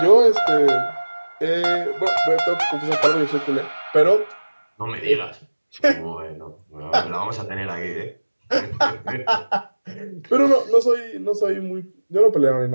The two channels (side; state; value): both; inverted; correlation -1.00